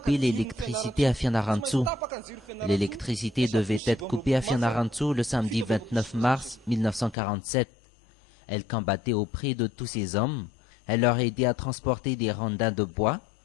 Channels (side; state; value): right; drops out; at 7.2 s